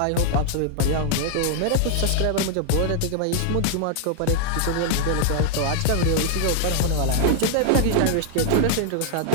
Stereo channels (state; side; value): different; both; correlation 0.00